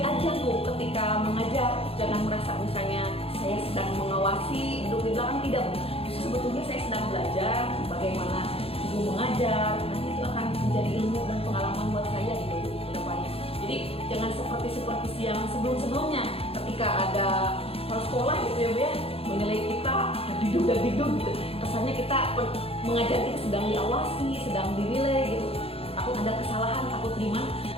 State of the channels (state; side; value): late; right; 0.28 ms